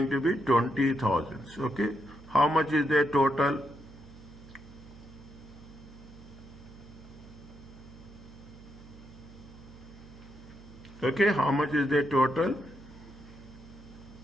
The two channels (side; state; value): right; noise; hum, 18 dB below the sound